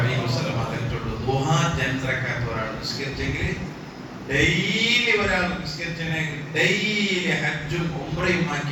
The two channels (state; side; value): identical; both; correlation 1.00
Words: വസല്ലം പറഞ്ഞിട്ടുണ്ട്, ദുഹാ ജൻറക്കാത്ത് ഒരാൾ നിസ്കരിച്ചെങ്കിൽ ഡെയിലി ഒരാൾ നിസ്കരിച്ചെങ്കിൽ ഡെയിലി ഹജ്ജും ഉംറയും